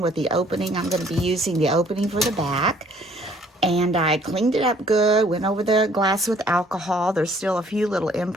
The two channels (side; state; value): both; normal; correlation 0.59